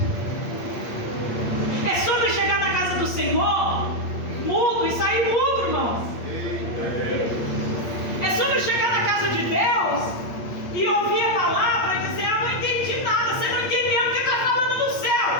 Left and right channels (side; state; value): right; late; 8.6 ms